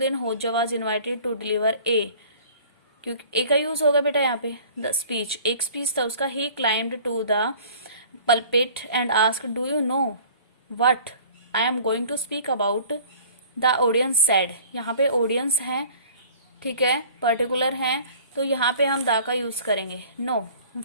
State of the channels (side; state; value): both; inverted; correlation -0.48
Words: होजा वाज इन्वाइटेड टू डिलीवर ए, क्योंकि ए का यूज होगा बेटा यहाँ पे, द स्पीच, एक स्पीच था उसका। He climbed to the pulpit and asked, do you know what I am going to speak about? The audience said, यहाँ पे ऑडियंस है, ठीक है, पर्टिकुलर है, तो यहाँ पे हम दा का यूज करेंगे। No,